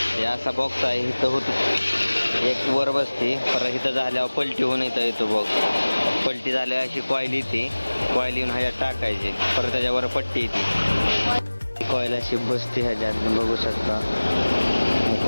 हे असा बॉक्स आहे, इथं होत एक वर बसते, परत इथं झाल्यावर पलटी होऊन येतो बॉक्स. पलटी झाल्यावर अशी कॉईल येते, कॉईल येऊन ह्याच्यात टाकायची, परत त्याच्यावर पट्टी येते. कॉईल अशी बसते ह्याच्यात, बघू शकता.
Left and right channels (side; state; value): both; inverted; correlation -1.00